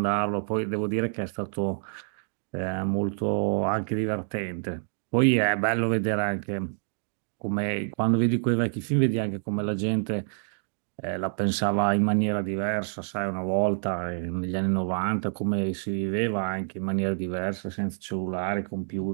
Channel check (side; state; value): left; silent; digital silence